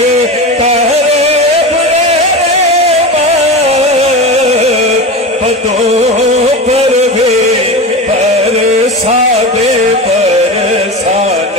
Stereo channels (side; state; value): both; normal; correlation 0.26